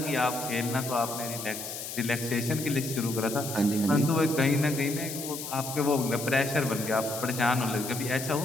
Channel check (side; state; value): left; noise; hiss, 8 dB below the sound